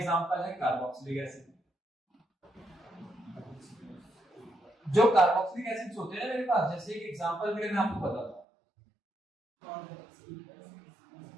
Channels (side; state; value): left; drops out; at 8.5 s